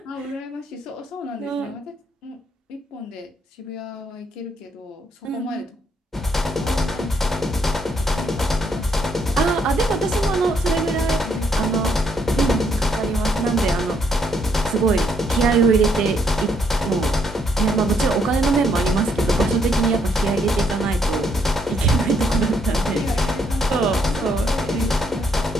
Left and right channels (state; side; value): normal; both; correlation 0.72